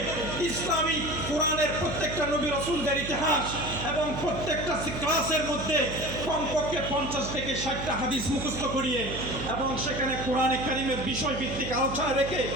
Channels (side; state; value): right; noise; hum, 8 dB below the sound